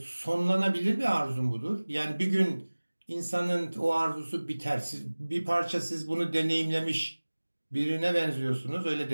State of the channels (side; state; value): both; inverted; correlation -1.00